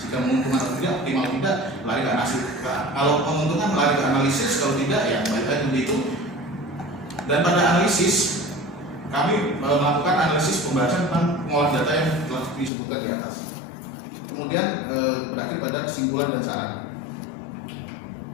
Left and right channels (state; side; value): drops out; right; at 12.7 s